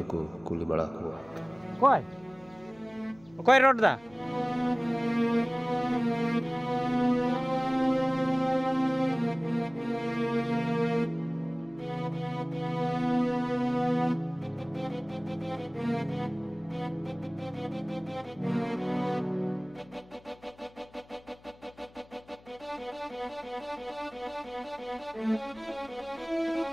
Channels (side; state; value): left; noise; hum, 26 dB below the sound